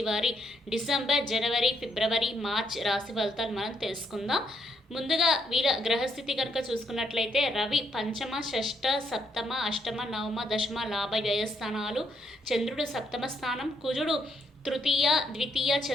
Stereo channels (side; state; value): both; normal; correlation 0.74